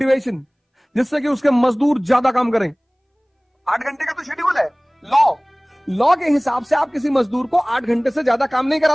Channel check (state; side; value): identical; both; correlation 1.00